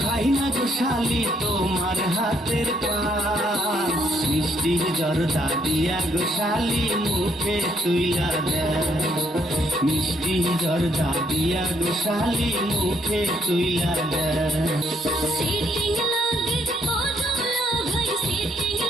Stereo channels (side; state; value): both; normal; correlation 0.71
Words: খাই না গো শালি তোমার হাতের পান। মিষ্টি জর্দা দিয়া গো শালি মুখে তুইলা দেয়, মিষ্টি জর্দা দিয়া গো শালি মুখে তুইলা দেয়। সিটিং লাগে ও দুলা ভাই সিটিং